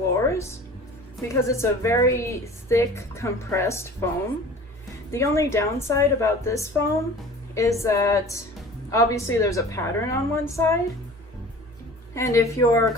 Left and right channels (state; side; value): normal; both; correlation 0.42